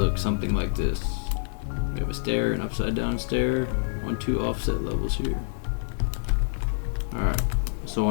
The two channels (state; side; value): silent; right; digital silence